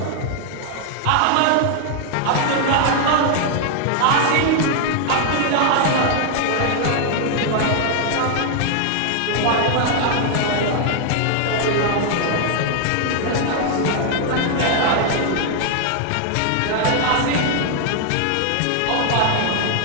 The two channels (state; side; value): different; both; correlation 0.00